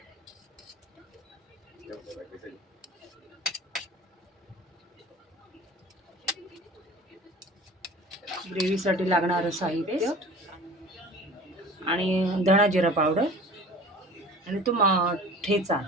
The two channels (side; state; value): both; normal; correlation 0.42